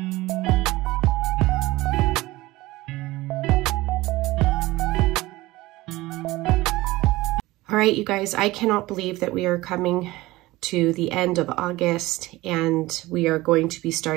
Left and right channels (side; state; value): left; quieter; 19.1 dB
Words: All right, you guys, I cannot believe that we are coming to the end of August and we are going to be